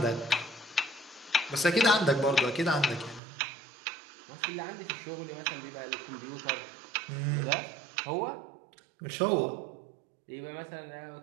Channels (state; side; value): drops out; left; at 3.2 s